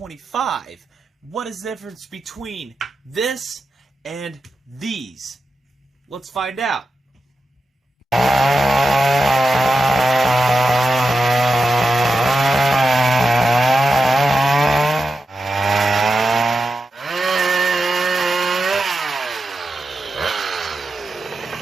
What is the difference between this and these? Let's find out.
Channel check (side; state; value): both; normal; correlation 0.90